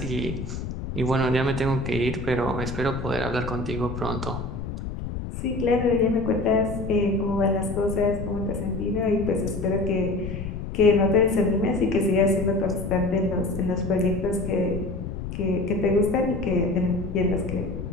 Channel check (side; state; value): left; noise; rumble, 7 dB below the sound